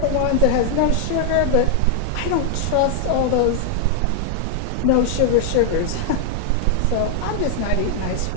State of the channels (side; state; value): both; different; correlation 0.00